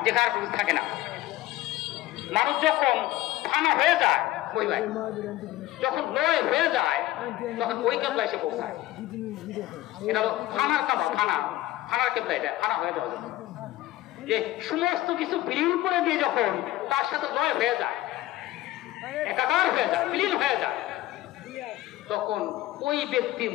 যেখানে কিছু থাকে না। মানুষ যখন ফানা হয়ে যায়, ওই ভাই যখন লয় হয়ে যায়, তখন ওই কেবলা এসে পৌঁছায়। এটা হলো ফানার কাবা, ফানার কেবলা, এটা ফানা হয়ে যাওয়া যায়। যে সমস্ত কিছু বিলীন করে দিয়ে যখন তার সাথে লয় হয়ে যায়, একাকার হয়ে যায়, বিলীন হয়ে যায়, তখন ওই ব্যক্তির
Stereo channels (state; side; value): quieter; right; 16.0 dB